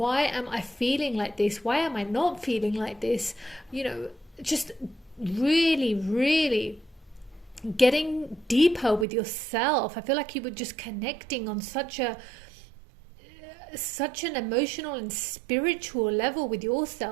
am I feeling like this? Why am I not feeling like this? You know, just really getting deeper with yourself. I feel like you were just connecting on such an emotional and spiritual level with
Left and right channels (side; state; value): left; drops out; at 9.1 s